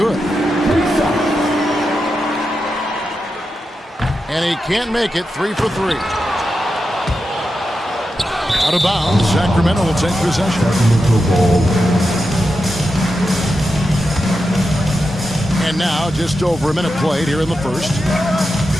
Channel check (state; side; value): normal; both; correlation 0.89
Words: And he can't make it, 3 for 3. Out of bounds, Sacramento will take possession. And now, just over a minute played here in the first.